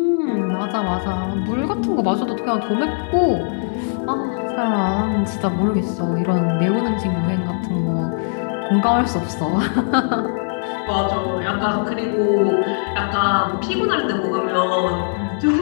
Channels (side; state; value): right; silent; 66 dB below the other